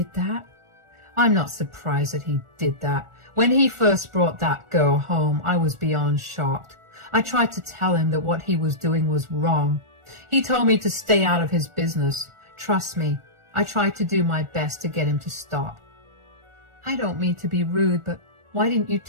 that? I'm not surprised that he did that. When he first brought that girl home, I was beyond shocked. I tried to tell him that what he was doing was wrong. He told me to stay out of his business. Trust me, I tried to do my best to get him to stop. I don't mean to be rude, but why didn't you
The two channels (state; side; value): late; left; 1.4 ms